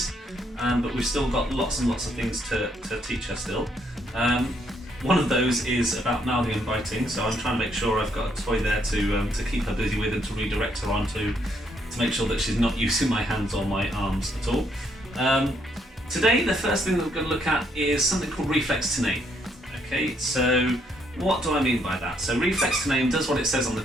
but we've still got lots and lots of things to teach her still. One of those is about mouthing and biting, so I'm trying to make sure I've got a toy there to keep her busy with and to redirect her onto, to make sure that she's not using my hands or my arms at all. Today, the first thing that we're going to look at is something called Reflex to Name. Okay, so what do I mean by that? So Reflex to Name does what it says on the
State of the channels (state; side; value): normal; both; correlation 0.72